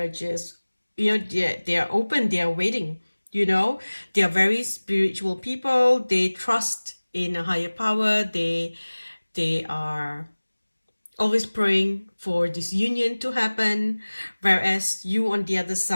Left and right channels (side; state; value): both; inverted; correlation -1.00